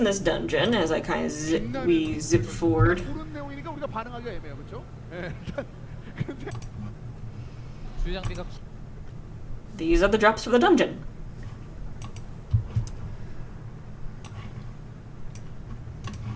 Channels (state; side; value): identical; both; correlation 1.00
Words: this dungeon, as I kind of zip forward. 그런 내용이니까 우리가 반응하기가 애매해요, 그렇죠? 예. 근데 주요 장비가 These are the drops for the dungeon.